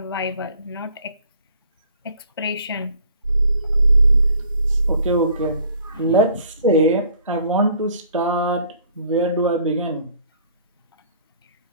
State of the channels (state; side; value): inverted; both; correlation -0.56